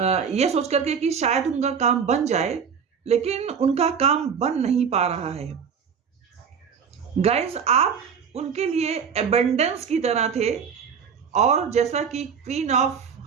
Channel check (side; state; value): left; quieter; 6.8 dB